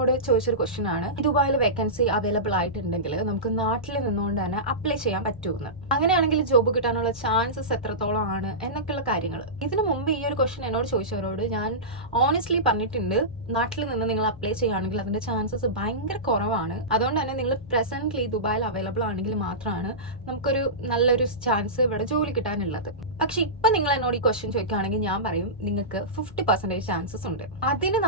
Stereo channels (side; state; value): both; normal; correlation -0.18